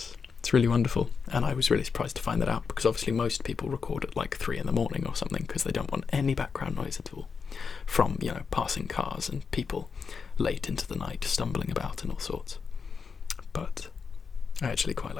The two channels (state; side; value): quieter; right; 5.6 dB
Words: It's really wonderful, and I was really surprised to find that out, because obviously most people record at like 3 a.m. or something because they don't want any background noise at all from, you know, passing cars and people late into the night stumbling about and all sorts. But I actually quite